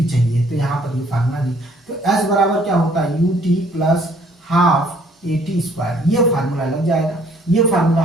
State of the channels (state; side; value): normal; both; correlation 0.61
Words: चाहिए, तो यहाँ पर ये फार्मूला नहीं। तो s बराबर क्या होता है, U T plus half A T square, ये फार्मूला लग जाएगा, ये फार्मूला